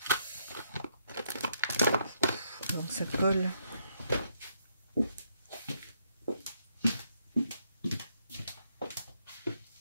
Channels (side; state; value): both; inverted; correlation -0.74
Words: Donc ça colle.